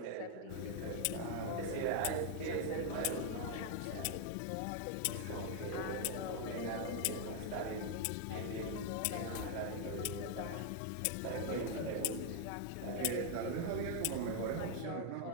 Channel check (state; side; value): different; both; correlation 0.00